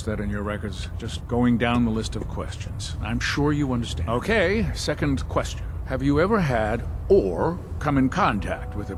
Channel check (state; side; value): identical; both; correlation 1.00